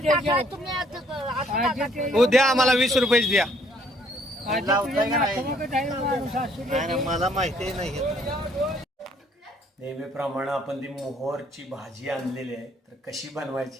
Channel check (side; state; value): both; normal; correlation 0.64